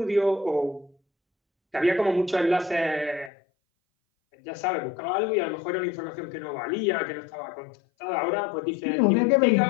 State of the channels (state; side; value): drops out; right; at 3.3 s